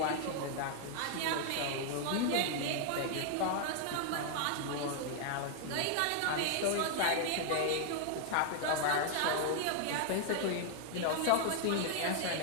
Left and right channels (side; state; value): both; different; correlation 0.00